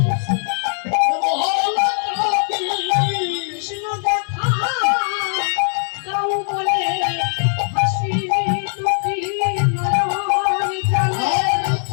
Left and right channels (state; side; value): silent; right; digital silence